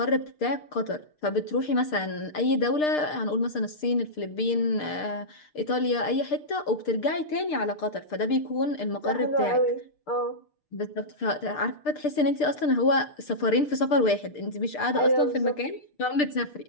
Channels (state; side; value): late; right; 6.6 ms